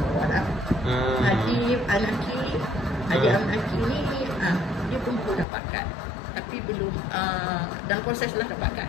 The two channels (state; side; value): drops out; right; at 5.5 s